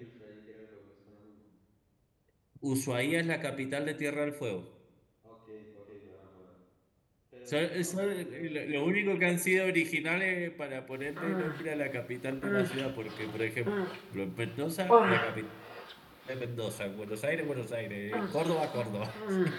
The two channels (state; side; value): identical; both; correlation 1.00